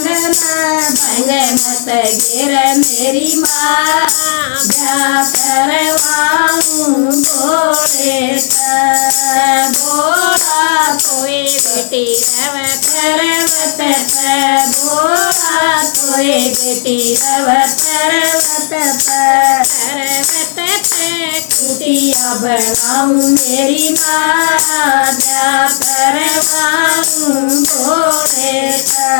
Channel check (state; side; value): silent; right; digital silence